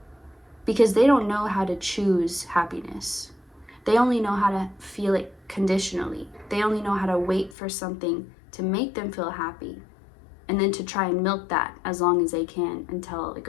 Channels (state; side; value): drops out; right; at 7.6 s